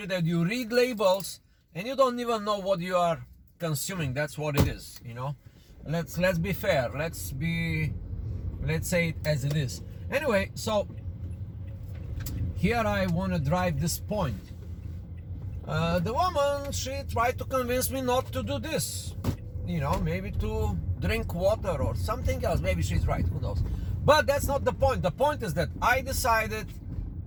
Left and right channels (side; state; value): both; identical; correlation 1.00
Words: that you read labels and you don't even know what you are consuming. That's what it is, you know. Let's be fair. Let's say it as it is. Anyway, so here I want to drive this point. The woman, she tried to convince me not to do this, you know, maybe to drink water or something else. Maybe she's right, who knows. But that's not the point. The point is that I decided,